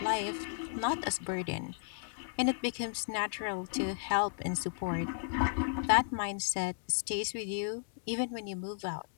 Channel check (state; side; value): silent; right; digital silence